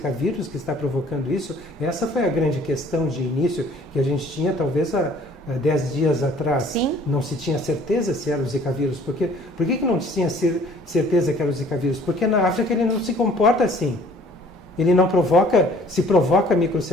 vírus que está provocando isso? Essa foi a grande questão de início que a gente tinha talvez há 10 dias atrás. Sim. Não se tinha certeza se era o Zika vírus. Por que não tinha certeza que era o Zika vírus? Porque na África ele não se comporta assim. Ele não se provoca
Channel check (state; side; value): normal; both; correlation 0.55